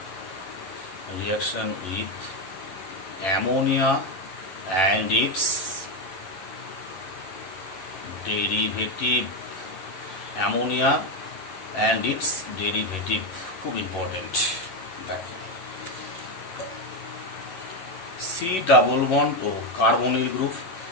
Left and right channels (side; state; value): right; late; 11 ms